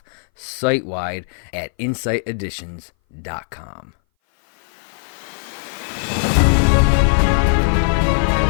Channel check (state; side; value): silent; right; 61 dB below the other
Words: site-wide at insighteditions.com.